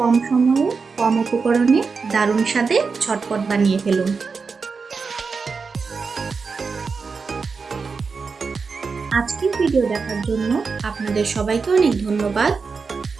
সময়ে কম উপকরণে দারুণ স্বাদে ঝটপট বানিয়ে ফেলুন। আজকের ভিডিও দেখার জন্য আপনাদের সবাইকে অনেক ধন্যবাদ।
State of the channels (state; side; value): quieter; left; 4.9 dB